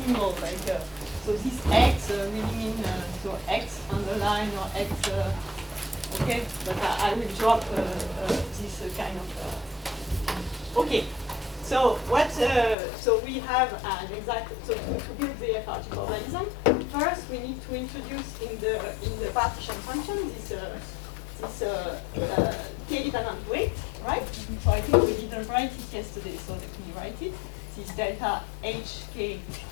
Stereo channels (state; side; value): drops out; right; at 12.8 s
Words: like so this x really mean so x underline or x, okay, but I will drop this kind of, okay. So what? So we have an exact. So to build the FRG formalism, first we need to introduce in the partition function this k-dependent weight, right? So I think we didn't write it yesterday, so let me write it. This delta hk